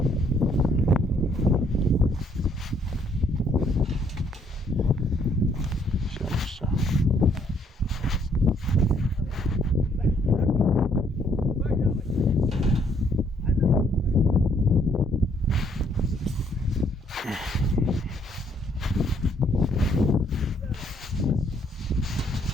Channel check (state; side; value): normal; both; correlation 0.67